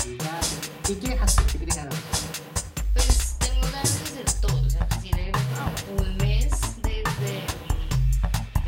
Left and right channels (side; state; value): both; identical; correlation 1.00